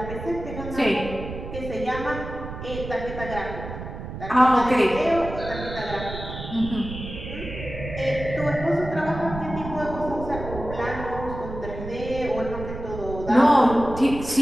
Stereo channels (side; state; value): right; noise; rumble, 9 dB below the sound